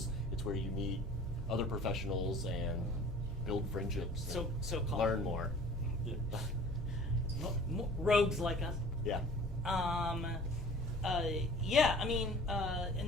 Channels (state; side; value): normal; both; correlation 0.47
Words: It's where you meet other professionals and build friendships. So-called. Learn more. Yeah. Rogues like us. Yeah. Yeah, I mean,